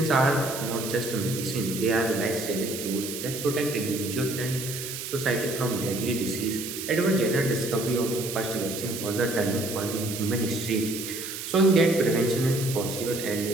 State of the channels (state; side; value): noise; right; hiss, 7 dB below the sound